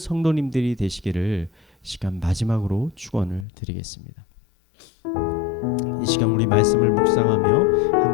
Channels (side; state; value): right; drops out; at 3.5 s